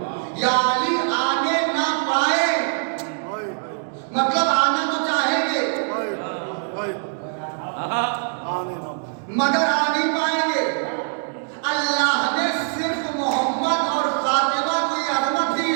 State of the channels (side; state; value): left; silent; 64 dB below the other